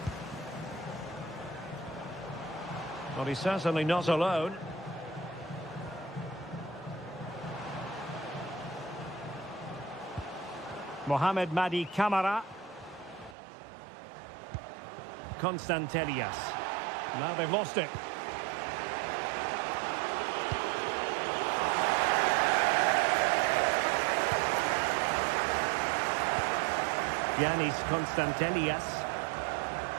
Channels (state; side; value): drops out; left; at 13.4 s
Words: Well, he's certainly not alone. Mohamed Madi Camara. Constantelias. Now they've lost it. Yanis Constantelias.